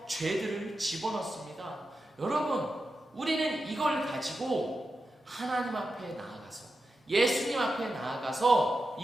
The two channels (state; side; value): normal; both; correlation 0.90